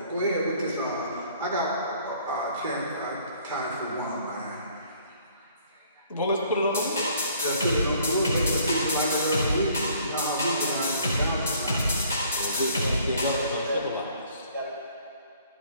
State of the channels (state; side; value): inverted; both; correlation -0.59